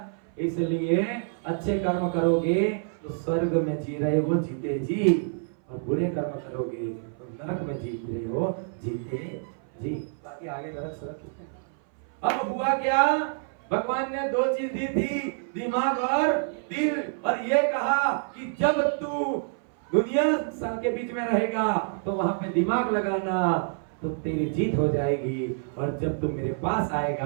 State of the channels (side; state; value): left; silent; 58 dB below the other